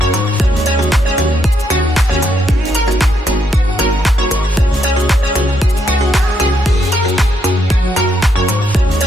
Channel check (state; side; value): normal; both; correlation 0.76